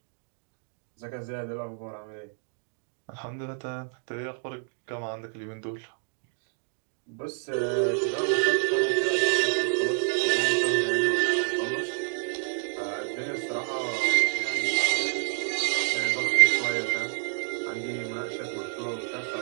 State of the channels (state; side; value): silent; left; 57 dB below the other